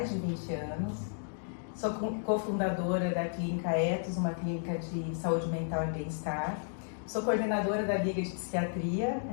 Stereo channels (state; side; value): silent; right; digital silence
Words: de 20 anos, sou cofundadora da Clínica Ethos, uma clínica de saúde mental e bem-estar, sou coordenadora da Liga de Psiquiatria,